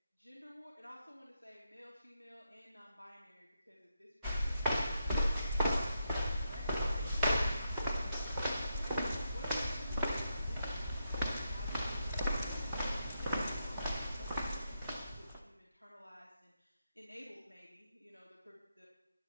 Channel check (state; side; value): inverted; both; correlation -0.83